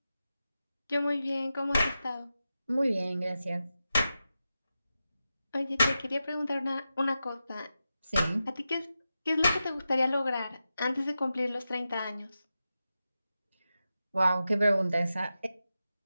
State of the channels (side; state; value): both; inverted; correlation -0.91